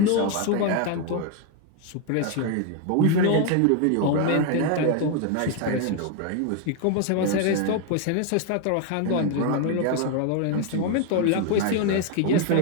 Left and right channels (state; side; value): different; both; correlation 0.01